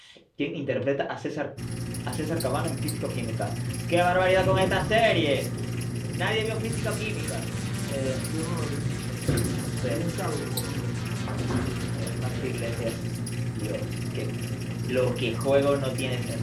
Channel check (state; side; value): identical; both; correlation 1.00